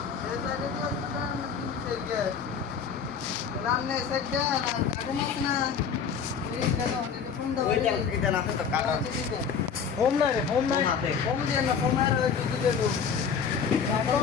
এই সাইডে যে সব থেকে সামনে সাইডে না কাটে মাছ না এই দেখো এটা ফোন দাও ওইটা এটা না তো কাটা হোম না রে হোম না হোম দিয়ে না হোম আর দুধ দিয়ে দেবো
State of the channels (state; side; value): quieter; right; 6.6 dB